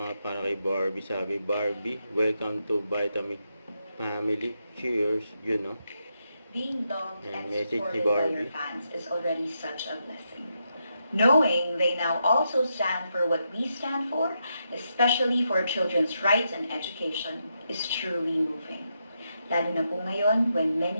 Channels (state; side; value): inverted; both; correlation -0.83